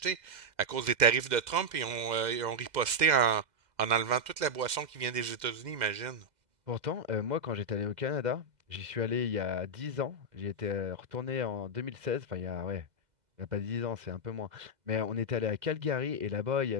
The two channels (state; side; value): late; left; 2.0 ms